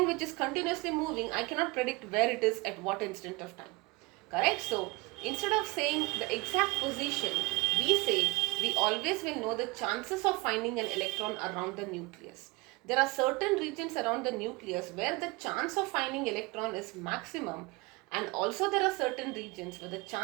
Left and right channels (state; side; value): quieter; left; 24.2 dB